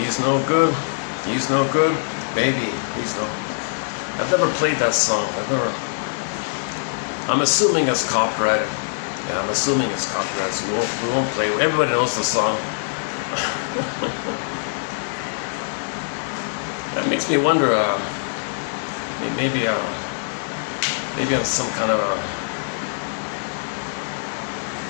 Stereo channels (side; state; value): right; silent; digital silence